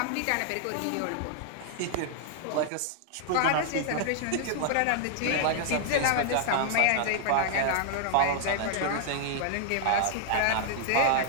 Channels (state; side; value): different; both; correlation -0.01